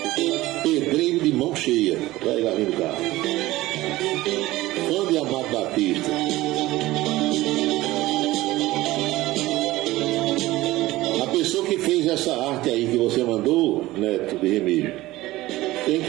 Pedreiro de mão cheia, vai lá do carro. Fã de Amado Batista. A pessoa que fez essa arte aí que você mandou, Neto de Remígio, tem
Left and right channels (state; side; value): quieter; left; 17.7 dB